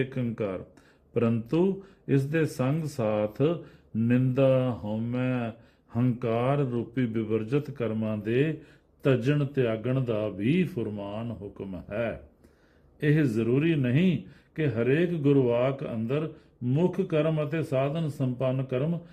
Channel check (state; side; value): identical; both; correlation 1.00